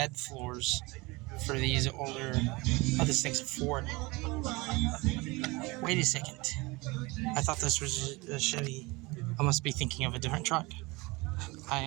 floors for these older. Oh, this thing's a Ford. Wait a second. I thought this was a Chevy. I must be thinking of a different truck. I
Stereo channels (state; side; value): quieter; left; 23.9 dB